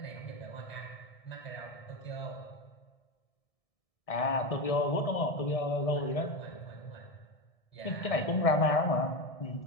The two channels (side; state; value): right; late; 1.6 ms